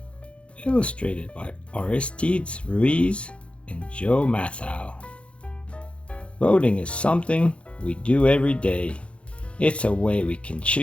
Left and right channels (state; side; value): late; right; 0.060 ms